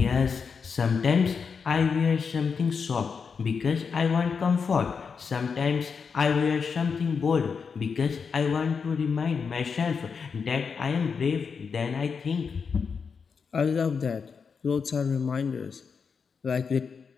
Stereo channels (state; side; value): quieter; right; 5.8 dB